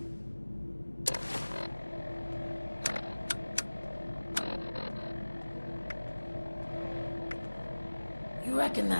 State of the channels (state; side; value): inverted; both; correlation -1.00